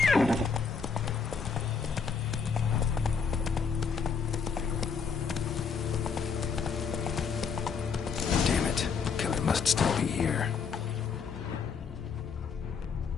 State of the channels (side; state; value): right; quieter; 5.8 dB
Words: Damn it. Killer must still be here.